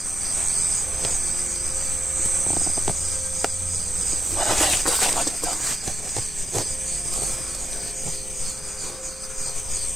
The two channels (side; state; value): both; normal; correlation 0.88